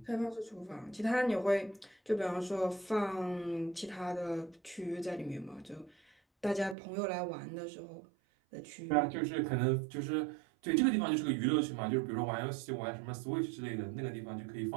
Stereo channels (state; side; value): drops out; left; at 6.8 s